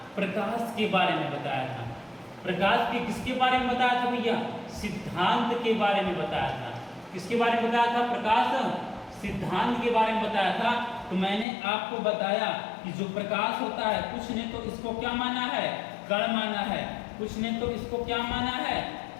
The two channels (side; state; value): right; drops out; at 11.5 s